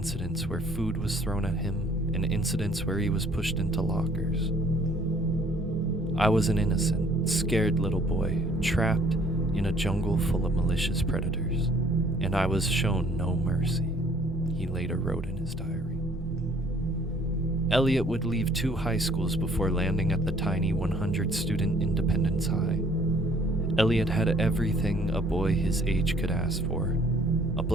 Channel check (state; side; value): normal; both; correlation 0.59